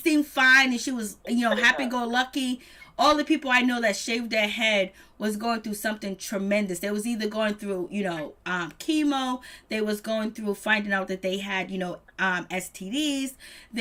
fine and she was, you know, happy-go-lucky, all the people I know that shaved their head was going through something tremendous. They was either going through, you know, chemo. They was going through finding out that they had, you know, STDs.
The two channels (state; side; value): identical; both; correlation 1.00